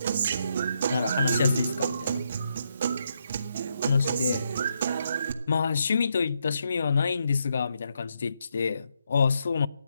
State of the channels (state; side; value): inverted; both; correlation -0.79